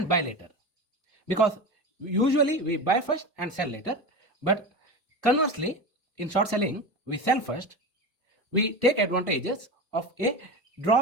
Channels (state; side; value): normal; both; correlation 0.26